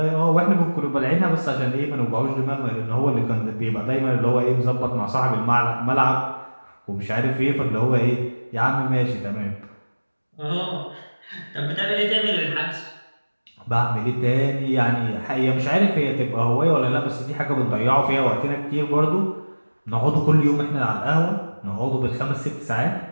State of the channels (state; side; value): inverted; both; correlation -1.00